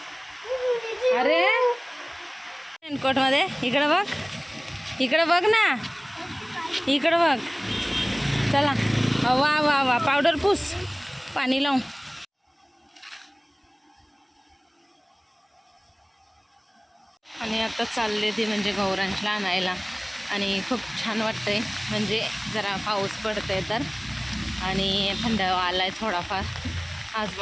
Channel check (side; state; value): both; identical; correlation 1.00